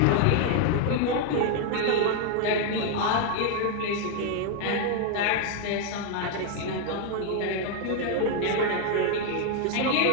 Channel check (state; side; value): different; both; correlation 0.01